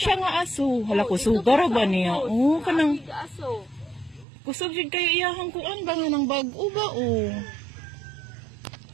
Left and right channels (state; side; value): drops out; left; at 4.2 s